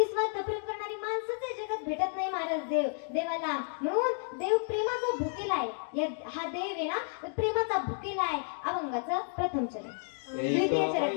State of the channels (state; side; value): silent; right; digital silence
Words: प्रेम करणारी माणसंच या जगात भेटत नाही महाराज देवाला. म्हणून देव प्रेमाचा भुकेला आहे. हा देव आहे ना प्रेमाचा भुकेला आहे. अभंगाचं प्रथम चरण, द्वितीय